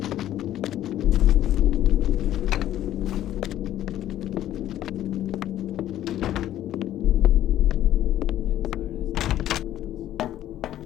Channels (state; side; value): quieter; right; 12.5 dB